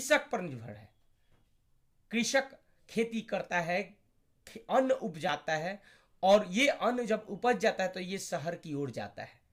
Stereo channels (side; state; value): both; identical; correlation 1.00